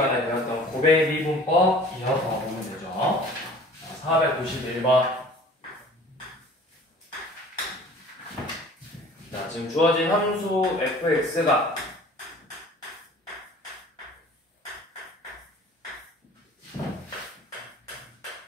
배웠던 고백 미분법 이어서 보면 되죠. 491번. 자, 지금 주어진 함수 fx가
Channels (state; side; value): normal; both; correlation 0.47